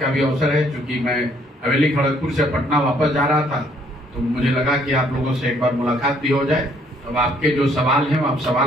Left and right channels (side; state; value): both; normal; correlation 0.65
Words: का भी अवसर है। क्योंकि मैं हवेली खड़गपुर से पटना वापस जा रहा था तो मुझे लगा कि आप लोगों से एक बार मुलाकात भी हो जाए। अब आपके जो सवाल हैं वो आप